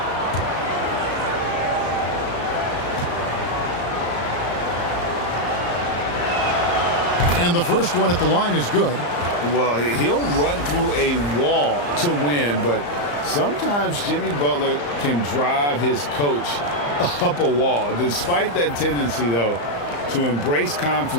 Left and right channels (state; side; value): late; right; 34 ms